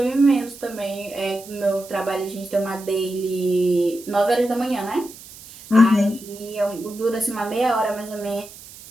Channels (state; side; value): noise; right; hiss, 18 dB below the sound